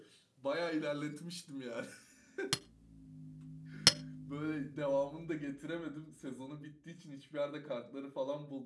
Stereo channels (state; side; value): identical; both; correlation 1.00